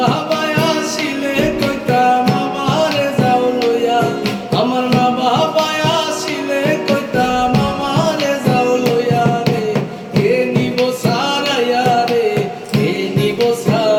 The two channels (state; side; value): identical; both; correlation 1.00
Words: আসিলে কইতাম আমারে যাও লইয়া, আমার মা বাবা আসিলে কইতাম আমারে যাও লইয়া রে। কে নিব সারাইয়া রে, কে নিব